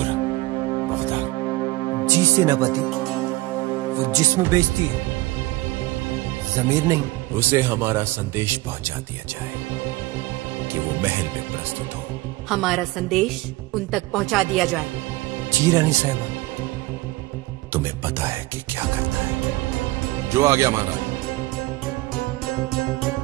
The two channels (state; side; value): quieter; left; 19.7 dB